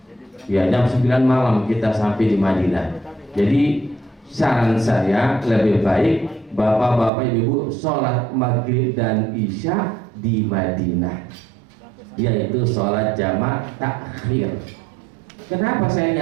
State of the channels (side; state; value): left; drops out; at 7.1 s